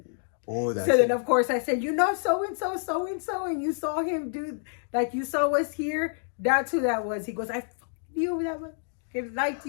Oh, that's so then, of course, I said, so-and-so, and you saw him do, like you saw us here. That's who that was. He goes, I knew that one. He liked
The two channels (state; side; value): silent; right; digital silence